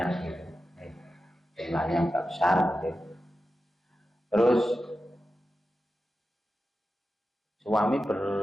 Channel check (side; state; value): both; normal; correlation 0.92